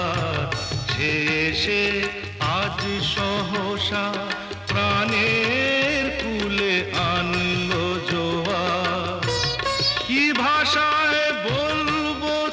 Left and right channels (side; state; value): both; identical; correlation 1.00